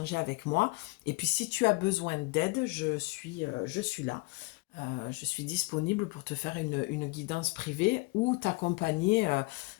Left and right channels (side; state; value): right; quieter; 26.5 dB